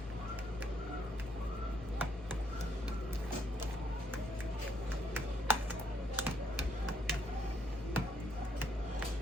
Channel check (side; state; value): both; normal; correlation 0.72